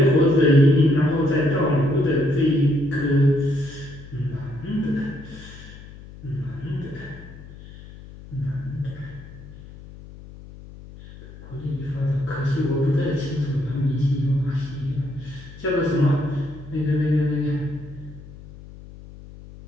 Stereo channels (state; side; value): noise; left; hum, 17 dB below the sound